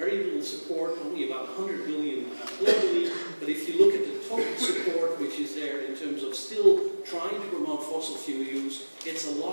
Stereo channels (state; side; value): inverted; both; correlation -1.00